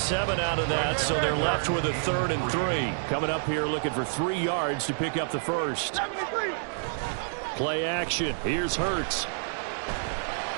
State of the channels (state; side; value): silent; left; digital silence